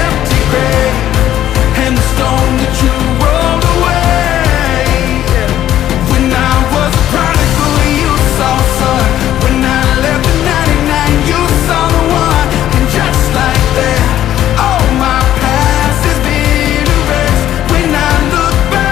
empty grave, and the stone that you rolled away, yeah. When I was a prodigal, you saw son. When I left the 99, you saw the one. And just like that, oh, my past has been erased. When I look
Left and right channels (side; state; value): right; quieter; 12.1 dB